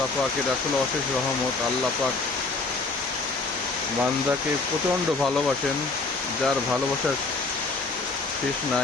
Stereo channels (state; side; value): quieter; right; 3.7 dB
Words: পাকের আসলে অশেষ রহমত। আল্লাহ পাক বান্দাকে প্রচণ্ড ভালোবাসেন, যার ভালোবাসার শেষ